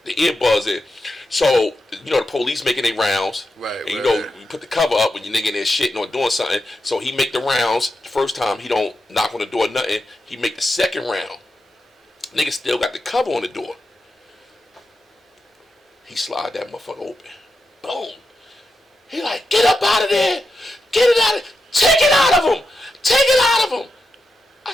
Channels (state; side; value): normal; both; correlation 0.88